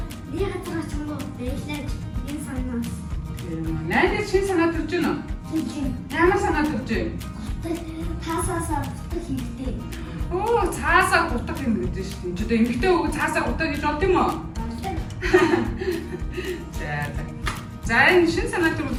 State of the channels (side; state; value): both; identical; correlation 1.00